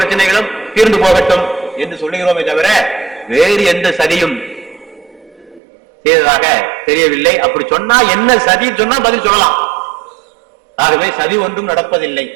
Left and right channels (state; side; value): drops out; left; at 5.6 s